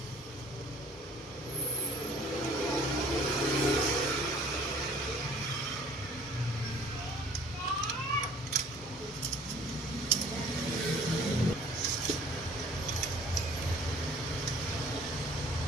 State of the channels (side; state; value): both; normal; correlation 0.52